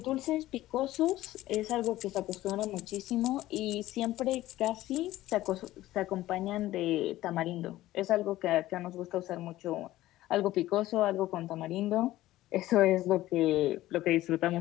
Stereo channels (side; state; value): right; quieter; 15.6 dB